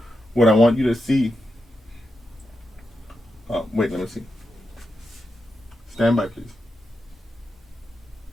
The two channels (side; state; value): both; normal; correlation 0.87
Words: what I want you to see. Wait, let me see. Stand by, please.